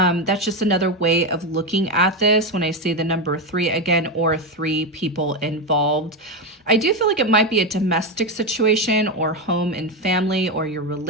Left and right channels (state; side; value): normal; both; correlation 0.12